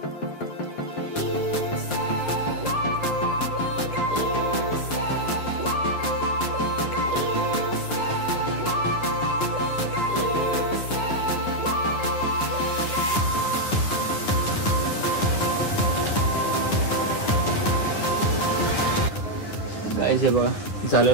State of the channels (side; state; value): right; late; 9.8 ms